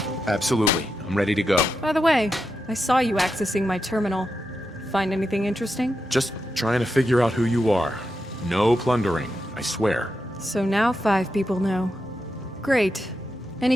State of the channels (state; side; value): normal; both; correlation 0.87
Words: absolutely. I'm ready to go. By the way, I saw you accessing my terminal. Find anything interesting? Just trying to figure out who you are. No plundering, I swear. So now 5 people know. Great. Any